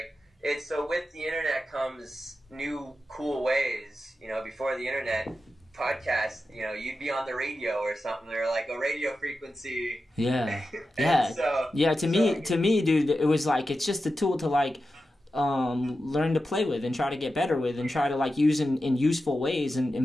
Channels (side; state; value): both; normal; correlation 0.91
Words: so with the internet comes new cool ways. You know, before the internet, podcast, you know, you'd be on the radio or something, or like a radio frequency. Yeah. To me, dude, it was like it's just a tool to like learn to play with and try to get better with and try to like use in useful ways